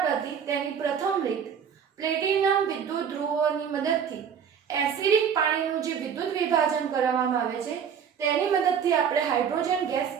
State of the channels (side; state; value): left; quieter; 7.6 dB